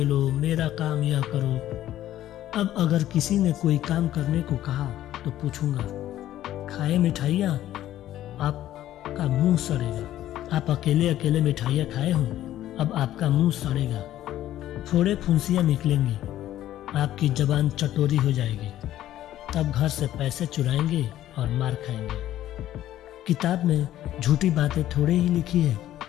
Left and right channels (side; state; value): right; quieter; 13.1 dB